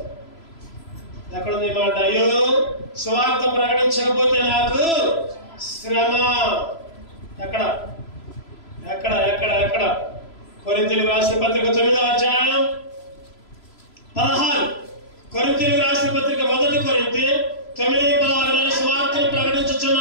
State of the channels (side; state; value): right; late; 3.0 ms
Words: ఎక్కడుంది ఈ మాట? అయ్యో సువార్త ప్రకటించకపోతే నాకు శ్రమ. ఎక్కడ ఎక్కడ ఎక్కడ ఎక్కడ? కొరింథీయులకు రాసిన పత్రిక 9వ అధ్యాయం 16. కొరింథీయులకు రాసిన పత్రిక 1 కొరింథీ 9:16 సువార్తను